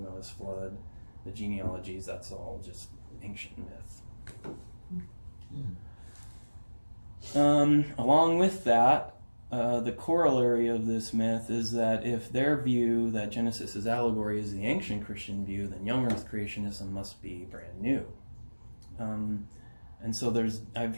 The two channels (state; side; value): inverted; both; correlation -1.00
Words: Noah's flood, the genealogies, that's all just ancient myth. Along with that, the corollary of this myth is that if their view that Genesis is allegory is the ancient Christian view, then young earth creationism must be brand new. And so I've